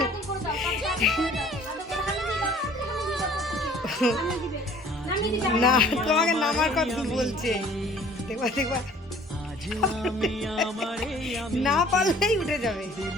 না, তোমাকে নামার কথা বলছে। দেখবা দেখবা, না পারলেই উঠে যাবে।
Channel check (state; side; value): normal; both; correlation 0.52